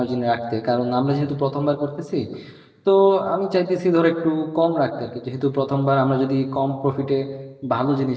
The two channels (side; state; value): both; identical; correlation 1.00